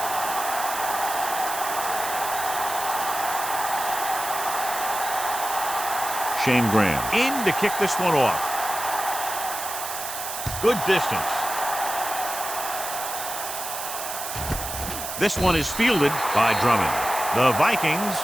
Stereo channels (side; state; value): right; noise; hiss, 6 dB below the sound